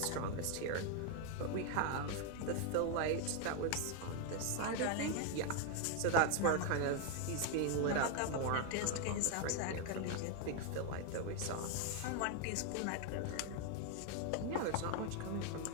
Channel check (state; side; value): different; both; correlation 0.01